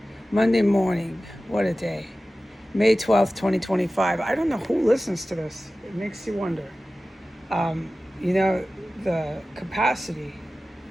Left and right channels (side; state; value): both; normal; correlation 0.96